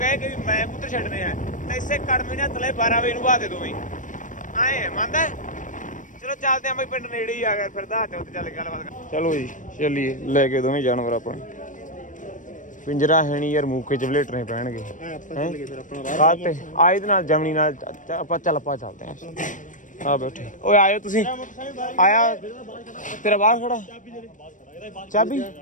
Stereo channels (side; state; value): right; late; 0.37 ms